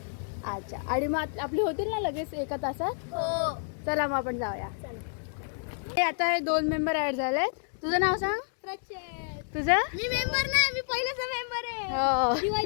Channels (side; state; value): right; silent; digital silence